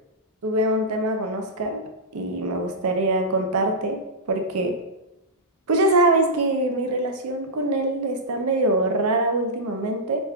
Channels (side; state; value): both; normal; correlation -0.12